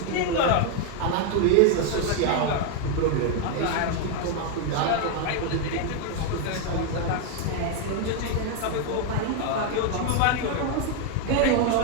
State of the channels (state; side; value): different; both; correlation 0.01